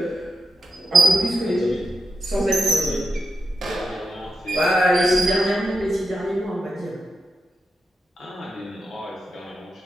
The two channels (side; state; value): both; normal; correlation 0.86